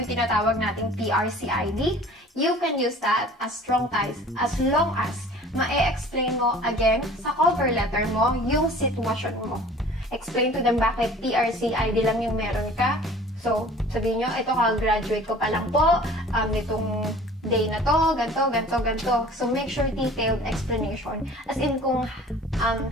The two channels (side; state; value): both; normal; correlation 0.46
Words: tinatawag nating PRC ID. You can use that as strong ties as long as ma-explain mo again sa cover letter mo yung sitwasyon mo. Explain to them bakit PRC ID lang yung meron ka. So, sabihin nyo, ito ka-graduate ko pa lang po, nitong day na to, ganto. So, make sure detailed explanation. As in kung